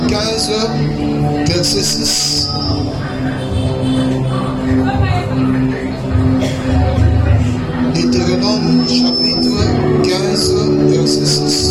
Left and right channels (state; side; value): identical; both; correlation 1.00